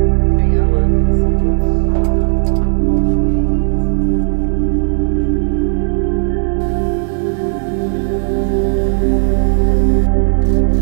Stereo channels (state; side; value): silent; left; digital silence